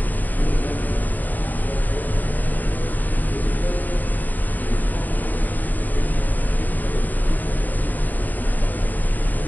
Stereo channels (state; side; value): late; right; 0.085 ms